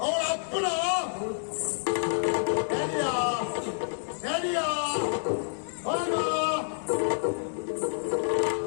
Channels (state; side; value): silent; right; digital silence